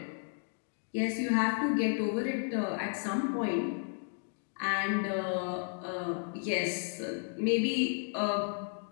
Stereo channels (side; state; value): right; silent; 56 dB below the other